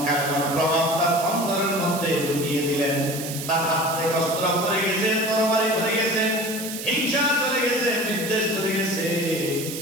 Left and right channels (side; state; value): right; noise; hiss, 8 dB below the sound